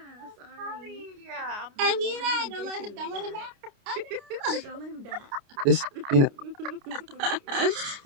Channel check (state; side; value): late; left; 29 ms